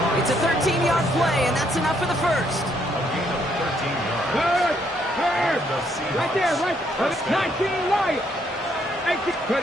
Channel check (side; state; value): both; normal; correlation 0.71